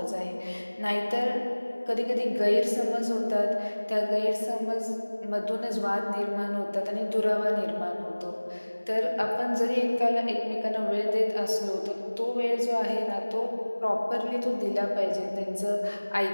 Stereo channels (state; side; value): inverted; both; correlation -1.00